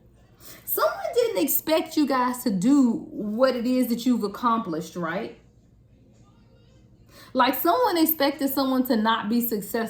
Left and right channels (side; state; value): both; identical; correlation 1.00